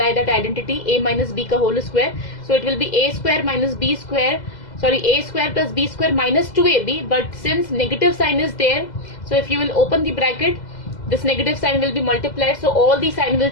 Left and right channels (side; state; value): right; late; 2.0 ms